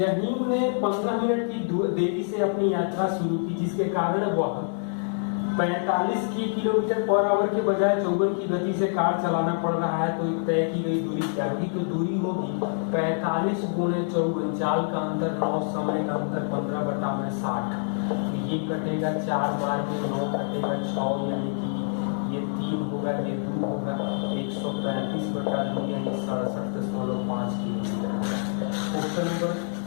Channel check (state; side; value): silent; right; digital silence